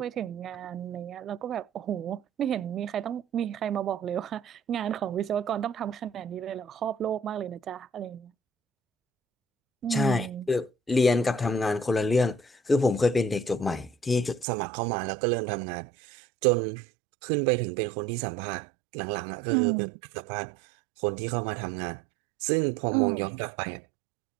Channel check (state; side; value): drops out; left; at 14.5 s